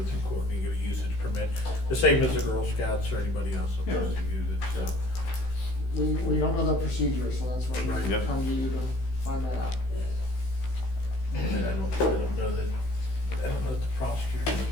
through court and you get a usage permit. The same as the Girl Scouts or anybody else that wants to use it, so. We don't know the procedure, so that's why Right. we Yep. come to you to find that out. And I don't know that the prosecutor has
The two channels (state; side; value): late; right; 16 ms